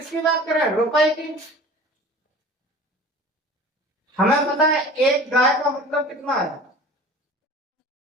बात करें, रुपए की। हमें पता है एक गाय का मतलब कितना है,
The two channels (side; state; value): both; normal; correlation 0.41